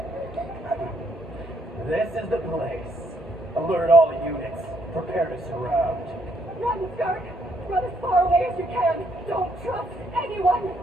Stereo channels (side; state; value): both; normal; correlation 0.71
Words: This is the place. Alert all units. Prepare to surround. Run, Skirk. Run as far away as you can. Don't trust anyone.